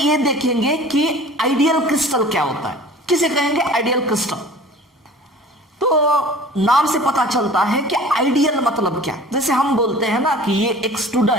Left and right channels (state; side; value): normal; both; correlation 0.44